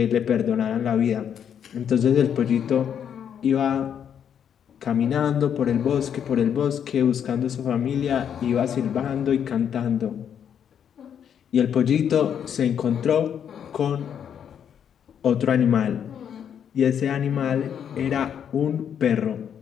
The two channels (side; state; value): right; quieter; 8.5 dB